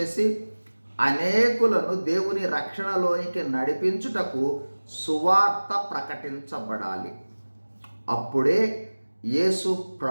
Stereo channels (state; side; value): inverted; both; correlation -1.00